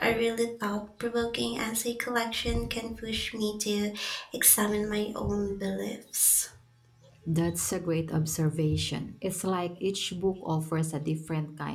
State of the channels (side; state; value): both; identical; correlation 1.00